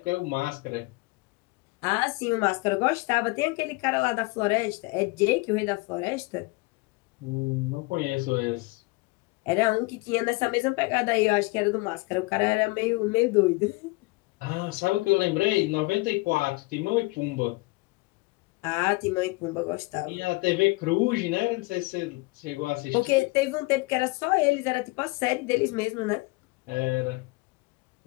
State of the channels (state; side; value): quieter; right; 24.7 dB